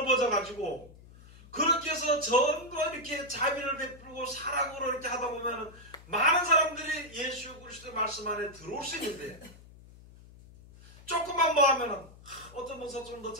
그렇게 해서 전부 이렇게 자비를 베풀고 사랑으로 이렇게 하다 보면 많은 사람들이 예수 그리스도의 말씀 안에 들어올 수 있는데, 조금만 뭐 하면은 어떤 목사 좀 더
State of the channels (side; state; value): left; noise; hum, 21 dB below the sound